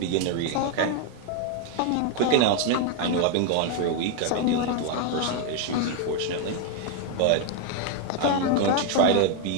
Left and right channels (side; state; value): both; different; correlation 0.01